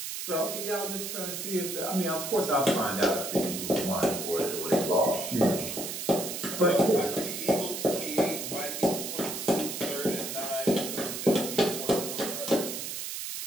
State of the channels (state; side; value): noise; right; hiss, 5 dB below the sound